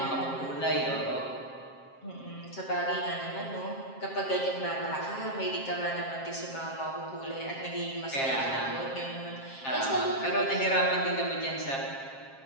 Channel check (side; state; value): right; late; 7.5 ms